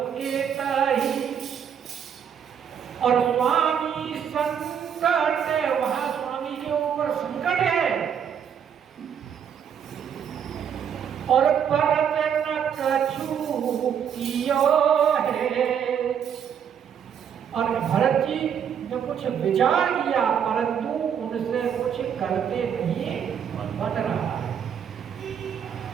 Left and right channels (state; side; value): quieter; left; 8.1 dB